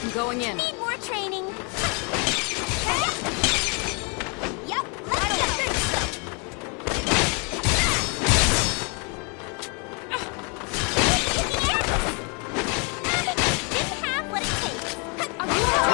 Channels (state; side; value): quieter; right; 34.2 dB